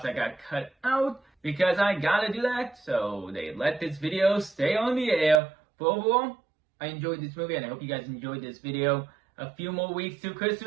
that got cut out, because I gotta do that, so they let this video stay on the air. But overall, I enjoyed this movie, and I hope you guys enjoyed this video. A few more weeks to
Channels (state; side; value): drops out; left; at 5.4 s